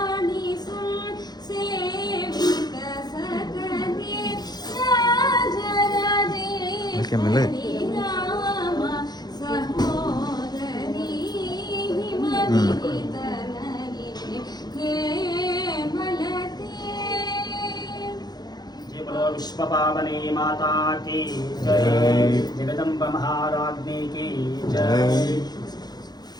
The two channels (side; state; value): right; late; 0.20 ms